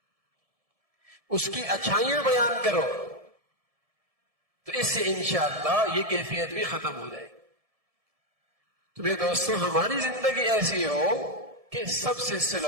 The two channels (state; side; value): late; left; 1.7 ms